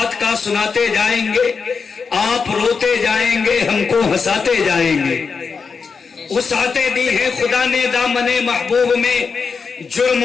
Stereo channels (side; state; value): right; quieter; 5.3 dB